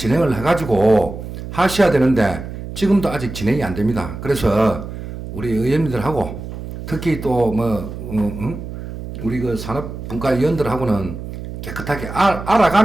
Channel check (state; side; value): noise; right; hum, 9 dB below the sound